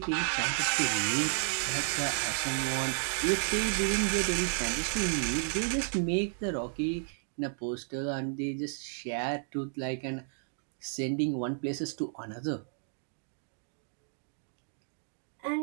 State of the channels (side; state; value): left; silent; 56 dB below the other